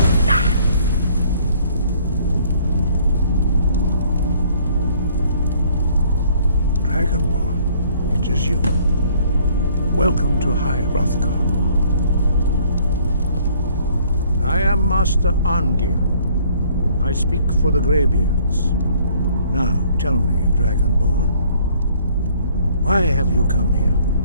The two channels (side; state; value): both; inverted; correlation -0.60